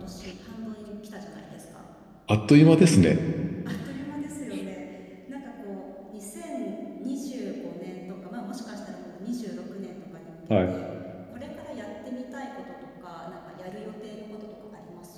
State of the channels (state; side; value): identical; both; correlation 1.00